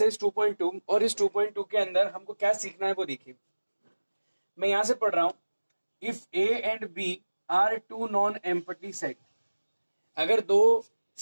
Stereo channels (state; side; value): inverted; both; correlation -1.00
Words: 2.2 और इस 2.2 के अंदर हमको क्या सीखना है वो देखिए. मैं यहां से पढ़ रहा हूं. If A and B are two non empty set, अगर दो